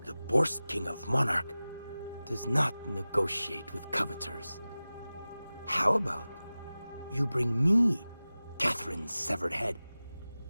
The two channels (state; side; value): inverted; both; correlation -0.97